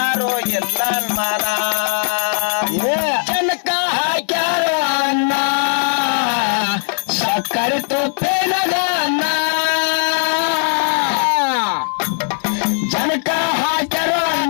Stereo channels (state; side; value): silent; right; digital silence